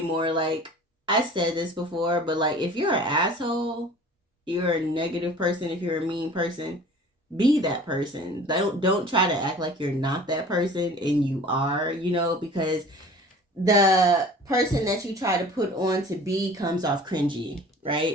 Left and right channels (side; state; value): both; normal; correlation 0.45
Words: more. Like, I said this before, but like, if you're an asshole, you're a negative person, if you're a mean person, be that person. Don't try to act like you're not that person and you are, because the person that you try to put on to be comes off cringy,